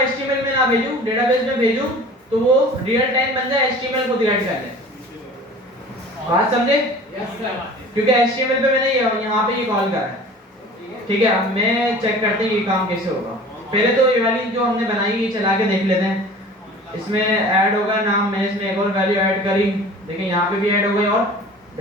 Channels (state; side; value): normal; both; correlation 0.43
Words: HTML में ना भेजूं, डेटाबेस में भेजूं, तो वो रियल टाइम बन जाए, HTML को डिलीट कर ले। बात समझे? क्योंकि HTML पे मैंने यहाँ पे ये कॉल करा है। ठीक है, अब मैं चेक करते हैं ये काम कैसे होगा। पहले तो ये वाली जो हमने बनाई ये चला के देख लेते हैं। इसमें ऐड होगा नाम, मैंने इसमें एक और वैल्यू ऐड करी, देखिए यहाँ पे भी ऐड हो गई और